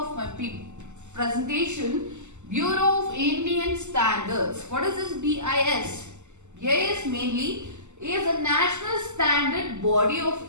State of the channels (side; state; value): left; late; 0.83 ms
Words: my presentation, Bureau of Indian Standards. What is this BIS? BIS mainly is a national standard body of